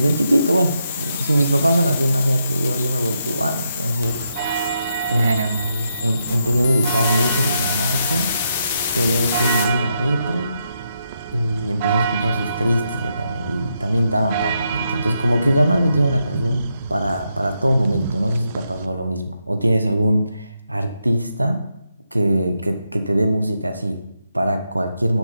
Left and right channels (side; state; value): both; inverted; correlation -0.81